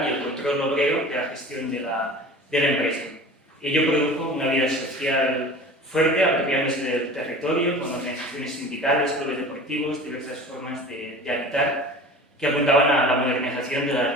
y el control obrero de la gestión de la empresa. Ello produjo una vida social fuerte, apropiándose del territorio, con organizaciones sindicales, clubes deportivos, diversas formas de habitar, que apuntaban a la modernización de las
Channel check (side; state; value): both; normal; correlation 0.39